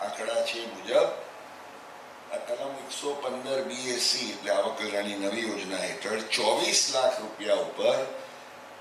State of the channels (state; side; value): identical; both; correlation 1.00